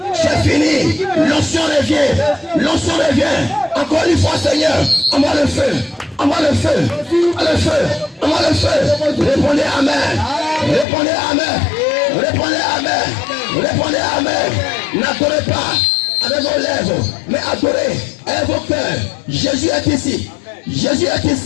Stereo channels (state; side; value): drops out; right; at 10.9 s